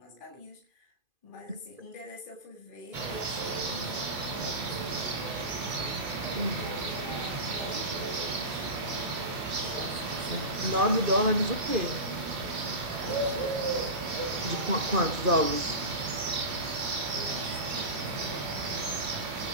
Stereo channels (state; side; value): late; left; 2.5 ms